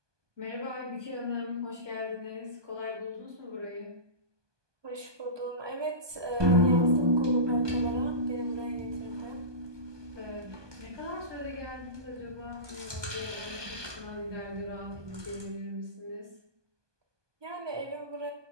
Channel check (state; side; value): late; left; 1.2 ms